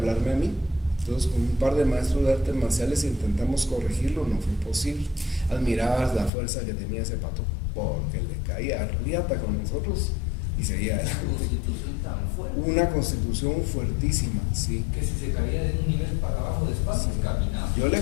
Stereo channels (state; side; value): drops out; right; at 6.3 s